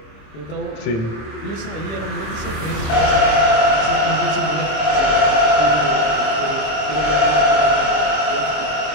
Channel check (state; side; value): late; right; 26 ms